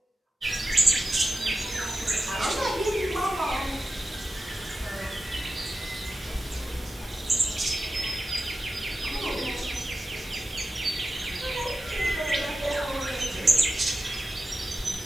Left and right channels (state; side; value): normal; both; correlation 0.92